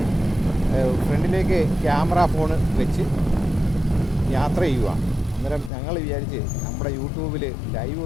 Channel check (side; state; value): right; drops out; at 5.7 s